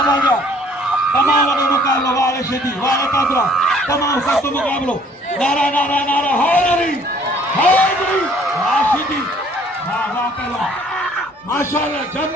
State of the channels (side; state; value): both; normal; correlation 0.58